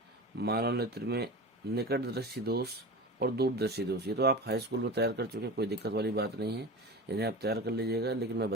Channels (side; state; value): both; normal; correlation 0.31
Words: में निकट दृष्टि दोष और दूरदर्शी दोष। ये तो आप हाई स्कूल में तैयार कर चुके हैं, कोई दिक्कत वाली बात नहीं है, इन्हें आप तैयार कर लीजिएगा। लेकिन मैं